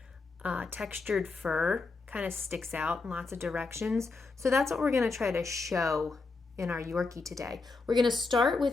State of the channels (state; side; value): quieter; right; 4.0 dB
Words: textured fur, kind of sticks out in lots of directions. So that's what we're going to try to show in our Yorkie today. We're going to start